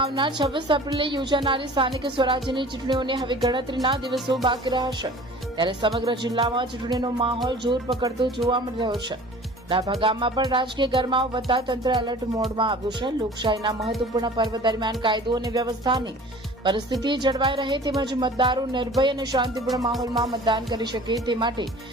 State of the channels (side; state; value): both; normal; correlation 0.45